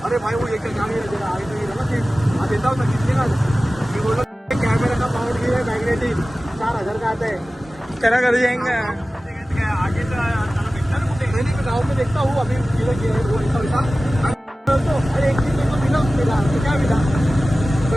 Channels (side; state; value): both; normal; correlation 0.96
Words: अरे भाई वो एक गाड़ी ना देता हूँ ना, कितने का कैमरा का पावर भी है, मैग्नेटिक 4000 का आता है. तेरा घर जाएंगे आगे तो गाँव में देखता हूँ. अभी अरे एक चीज तो मिला, तो क्या मिला?